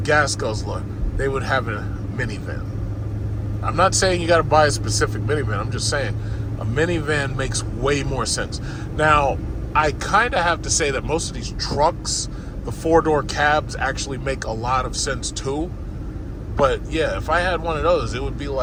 guzzler, they would have a minivan. I'm not saying you got to buy a specific minivan. I'm just saying a minivan makes way more sense. Now, I kind of have to say that most of these trucks, the 4-door cabs, actually make a lot of sense too. But yeah, if I had one of those, it would be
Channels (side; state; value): both; identical; correlation 1.00